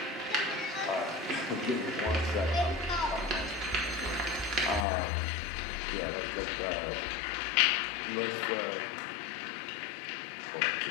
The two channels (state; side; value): drops out; right; at 4.9 s